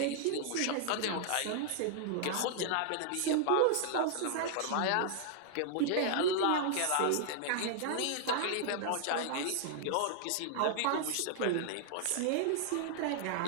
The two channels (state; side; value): different; both; correlation -0.01